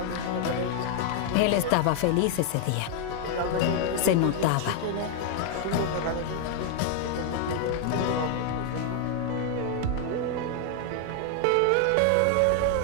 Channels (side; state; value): both; different; correlation 0.00